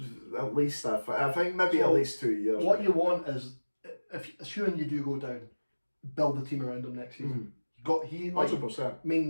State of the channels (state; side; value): inverted; both; correlation -1.00